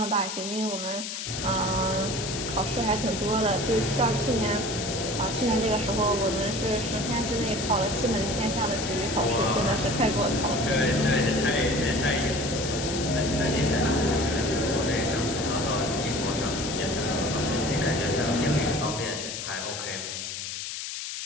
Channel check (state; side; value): noise; left; hiss, 6 dB below the sound